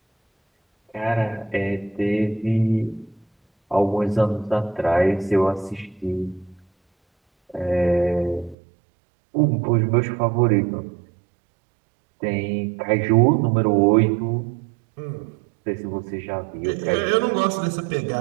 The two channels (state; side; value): drops out; left; at 8.6 s